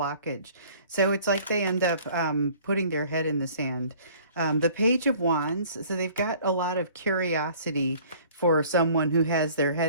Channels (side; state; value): both; inverted; correlation -0.52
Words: So it's like they end up putting their head in the sand. The Page of Wands, so they've got a lot of curiosity for someone who has their